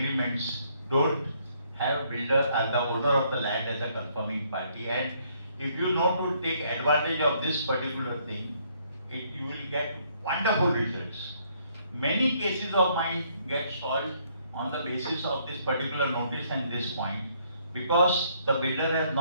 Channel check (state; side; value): inverted; both; correlation -0.68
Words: don't have builder as the owner of the land as a confirming party, and if you know to take advantage of this particular thing, you will get wonderful results. Many cases of mine get solved on the basis of this particular notice and this point, because the builder has